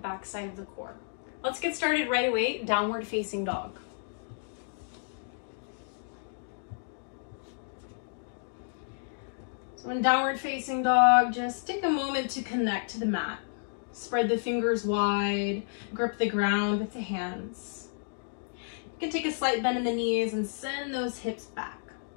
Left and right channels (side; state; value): right; silent; digital silence